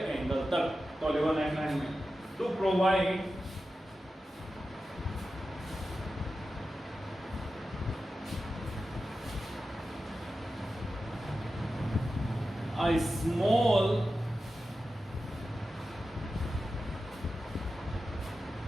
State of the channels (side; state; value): both; normal; correlation 0.92